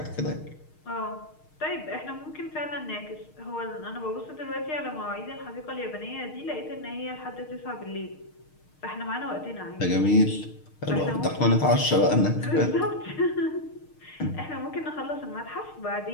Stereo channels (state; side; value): late; right; 6.5 ms